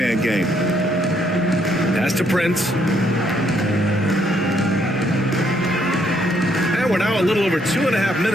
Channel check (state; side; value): normal; both; correlation 0.70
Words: game. Pass to Prince. And we're now a little over 2.5